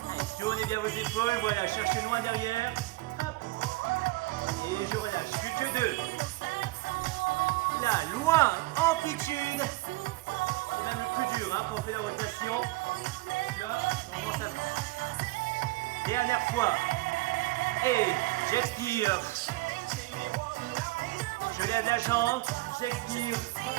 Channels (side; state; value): left; quieter; 20.7 dB